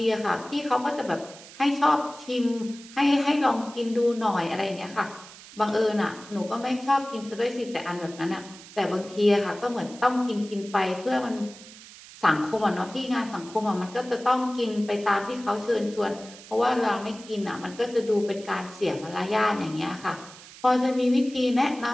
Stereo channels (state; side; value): noise; right; hiss, 18 dB below the sound